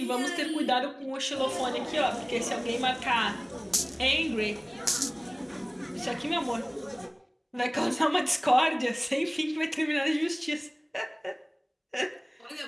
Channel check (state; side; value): identical; both; correlation 1.00